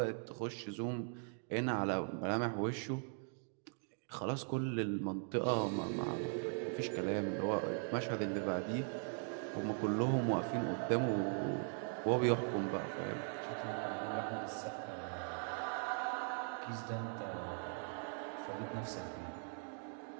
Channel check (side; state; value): left; silent; 51 dB below the other